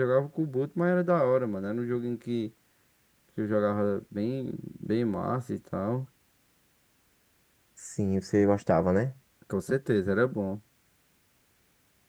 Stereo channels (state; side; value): identical; both; correlation 1.00